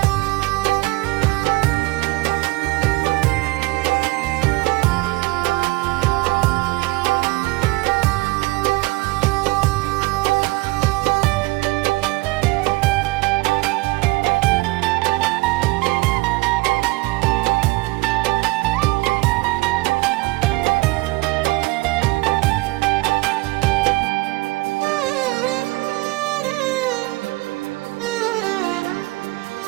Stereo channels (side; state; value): left; quieter; 21.9 dB